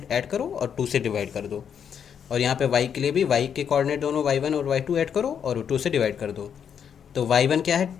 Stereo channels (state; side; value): quieter; right; 7.9 dB